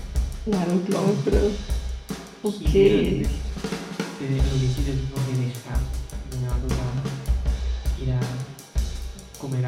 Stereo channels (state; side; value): identical; both; correlation 1.00